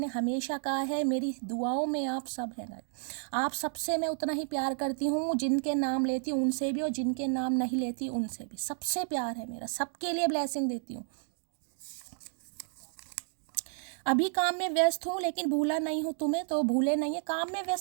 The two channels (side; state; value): left; silent; digital silence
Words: हमेशा कहा है, मेरी दुआओं में आप सब हैं, आप सबसे मैं उतना ही प्यार करती हूँ, जिनके नाम लेती हूँ उनसे भी, और जिनके नाम नहीं लेती उनसे भी, सबसे प्यार है मेरा, सबके लिए ब्लेसिंग देती हूँ। अभी काम में व्यस्त हूँ, लेकिन भूला नहीं हूँ तुम्हें, तो भूले नहीं है, काम में